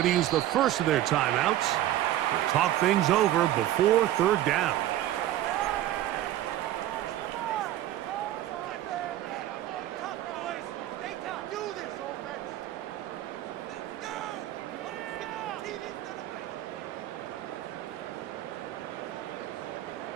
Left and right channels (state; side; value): quieter; left; 13.5 dB